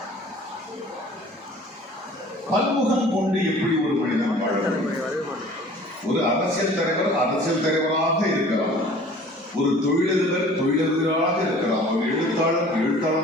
பன்முகம் கொண்டு எப்படி ஒரு மனிதன் வாழ முடியும்? ஒரு அரசியல் தலைவர் அரசியல் தலைவராக இருக்கலாம், ஒரு தொழிலதிபர் தொழிலதிபராக இருக்கலாம், ஒரு எழுத்தாளர்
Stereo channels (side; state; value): both; normal; correlation 0.48